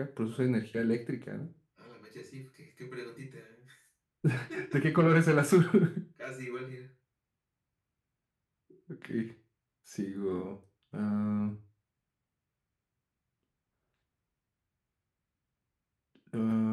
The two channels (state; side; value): identical; both; correlation 1.00